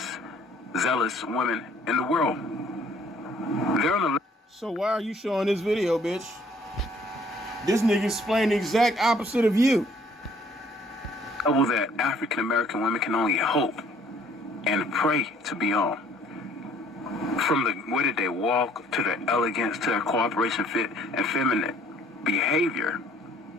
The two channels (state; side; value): normal; both; correlation 0.59